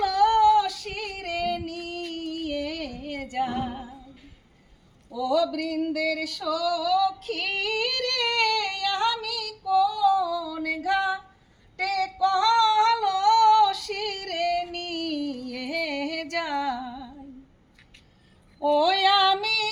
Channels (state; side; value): identical; both; correlation 1.00